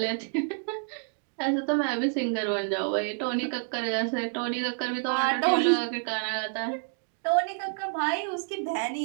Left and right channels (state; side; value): silent; left; 59 dB below the other